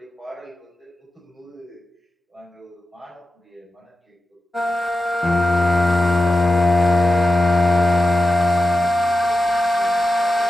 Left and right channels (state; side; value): normal; both; correlation 0.92